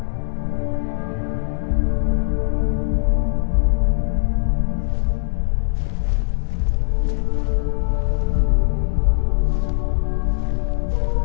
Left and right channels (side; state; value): right; silent; digital silence